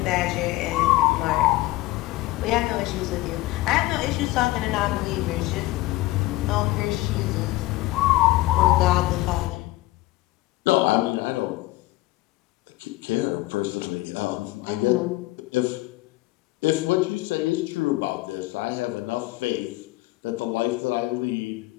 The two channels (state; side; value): quieter; right; 18.7 dB